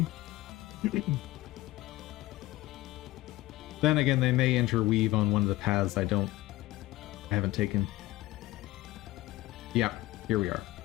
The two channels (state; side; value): quieter; right; 17.9 dB